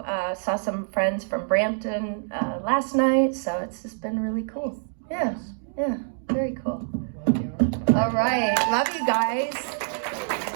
saw some friends from Brampton last night, so it's just been really cool. Yeah, very cool. All right, love you guys.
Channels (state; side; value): silent; left; digital silence